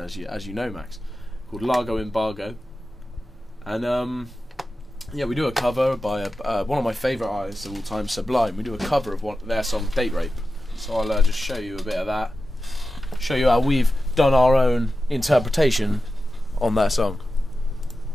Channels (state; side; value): normal; both; correlation 0.92